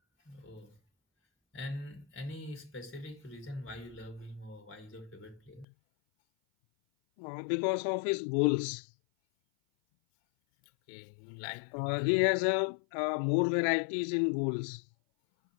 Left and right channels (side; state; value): right; drops out; at 5.7 s